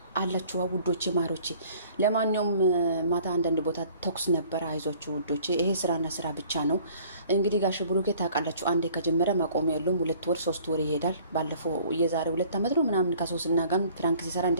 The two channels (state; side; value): inverted; both; correlation -0.54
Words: አላችሁ ውዶቼ ማሮቼ። ለማንኛውም ማታ አንዳንድ ቦታ ተኩስ ነበር። አይዟችሁ ውዶቼ፣ ይሄ ስራና ስራ ብቻ ነው። እንግዲህ ጋሽ ብሩኬ ታውቃላችሁ፣ አንዴ ከጀመረ ማቆሚያ የለውም። 2 ወር 3 ወር ይሄዳል። ባለፈው የዛሬ 2 ዓመት ነው ምናምን ከሶስና ጋር ፍራንክ ሲሰራ